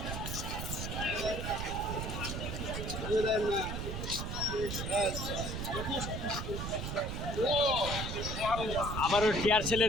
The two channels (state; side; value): noise; right; rumble, 4 dB below the sound